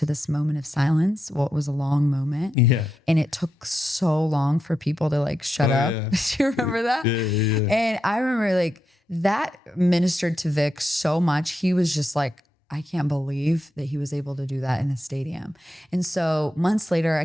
this moment of silence. Well, it was a long moment, Yeah. and it took so long for people to like shut up. Yeah. Do you remember that? Yeah. And I remember like that ministered to Vic so much. He was just like, I can't believe that he was able to do that in a stadium. And so months later,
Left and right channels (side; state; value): both; normal; correlation 0.86